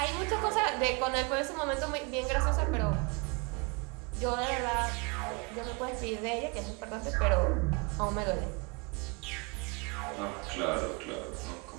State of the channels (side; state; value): left; quieter; 29.9 dB